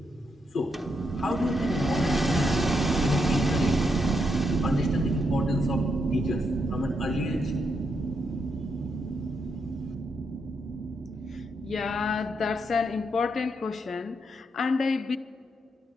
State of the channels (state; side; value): normal; both; correlation 0.80